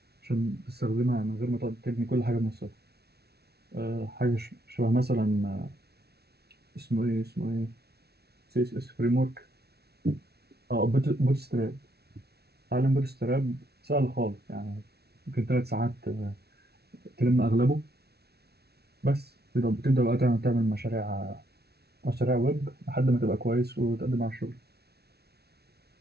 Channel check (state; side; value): late; left; 0.47 ms